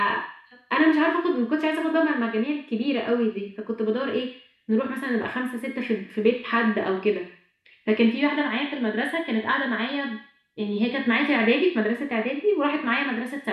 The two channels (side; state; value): both; identical; correlation 1.00